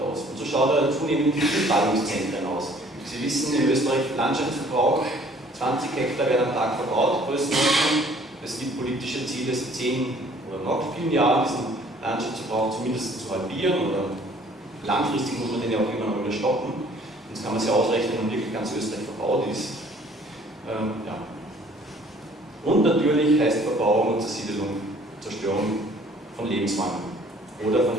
Und so schaut er zunehmend in vielen Ballungszentren aus. Sie wissen, in Österreich Landschaftsverbrauch, 20 Hektar werden am Tag verbaut, Größenordnung. Es gibt politische Ziele, 10 oder noch vielen Jahren diesen Landschaftsverbrauch zumindest zu halbieren, oder langfristig muss man den ja auch immer noch wieder stoppen. Sonst kann man sich ausrechnen, wenn wirklich ganz Österreich verbaut ist. Ja. Und natürlich heißt Verbauung und Zersiedelung Zerstörung von Lebensräumen oder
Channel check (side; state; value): both; normal; correlation 0.56